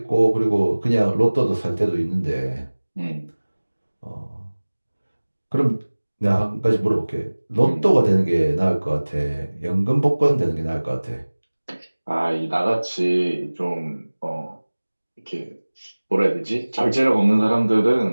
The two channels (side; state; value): both; inverted; correlation -1.00